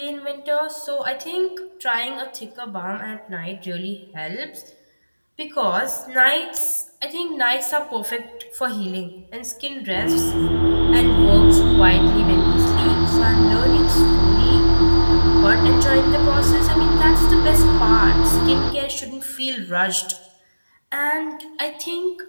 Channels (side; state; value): both; inverted; correlation -1.00